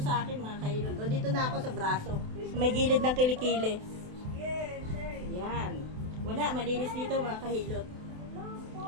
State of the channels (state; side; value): late; left; 28 ms